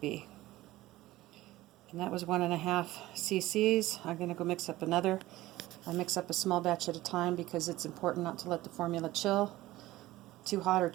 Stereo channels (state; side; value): quieter; left; 17.1 dB